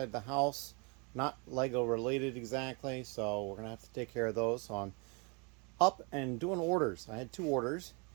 the house, not Lego related exactly, so we're going to have to take care of those. So I'm up and doing orders. I had 2 orders.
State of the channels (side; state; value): left; quieter; 32.2 dB